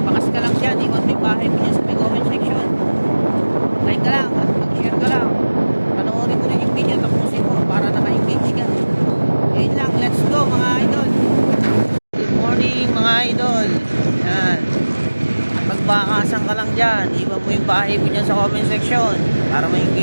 ka lang dyan, iwan mo yung bahay mo dyan sa may comment section, like ka lang at mag-share ka lang, panoorin mo rin yung video, tapusin mo para naka-engage ka. Yun lang, let's go mga idol. Good morning mga idol. Yan, magbakasan ka lang dyan, iwan mo yung bahay mo dyan sa comment section para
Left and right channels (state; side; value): inverted; both; correlation -1.00